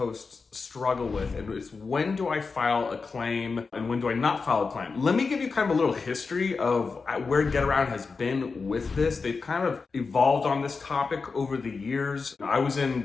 struggle with, and it's when do I file a claim and when do I not file a claim? Let me give you kind of a little history of where Getaround has been with this. They've kind of evolved on this topic over the years. I was in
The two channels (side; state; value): right; quieter; 4.6 dB